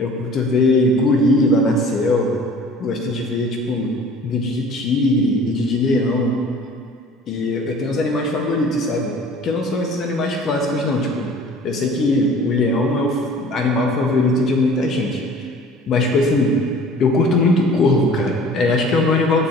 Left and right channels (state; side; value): normal; both; correlation 0.47